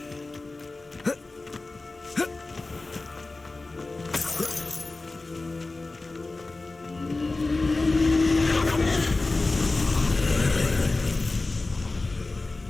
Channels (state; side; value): quieter; right; 3.3 dB